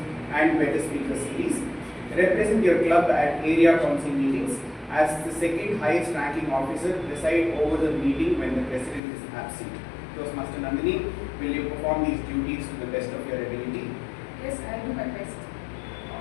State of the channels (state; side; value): drops out; right; at 9.0 s